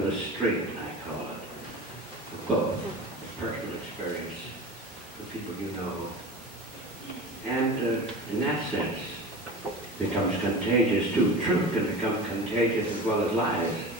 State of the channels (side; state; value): both; normal; correlation 0.33